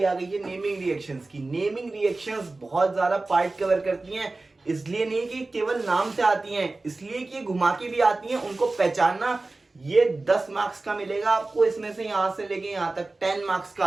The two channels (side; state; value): left; quieter; 3.2 dB